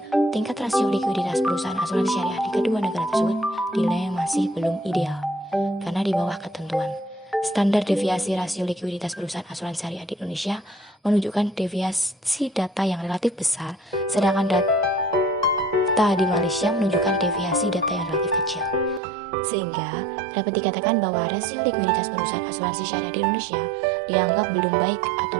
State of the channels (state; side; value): drops out; left; at 19.0 s